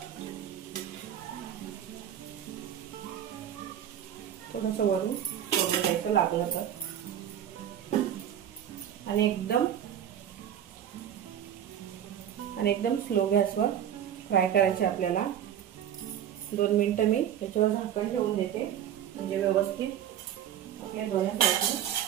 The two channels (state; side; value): quieter; left; 10.1 dB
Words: थोडंसं वरून सोडून द्यायचं लागलं तर. आणि एकदम स्लो गॅसवर फ्राय करायचे आपल्याला. 2 मिनिटं मी याच्यावर झाकण ठेवून देते, म्हणजे व्यवस्थित आपल्या दोन्ही